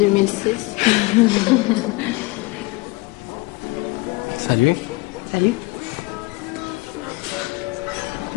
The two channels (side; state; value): right; quieter; 23.0 dB